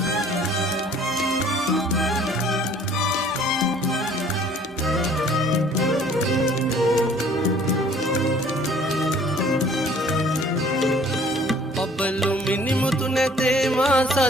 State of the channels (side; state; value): both; normal; correlation 0.54